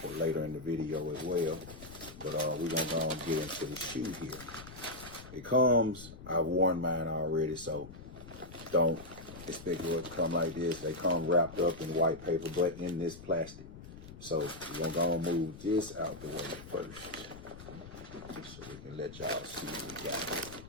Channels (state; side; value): noise; left; rumble, 15 dB below the sound